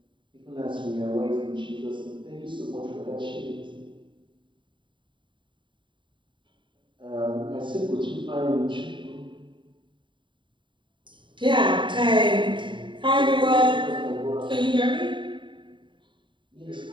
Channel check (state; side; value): late; left; 0.23 ms